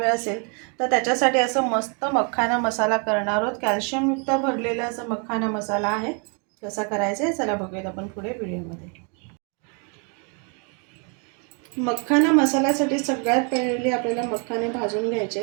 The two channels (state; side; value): quieter; left; 37.2 dB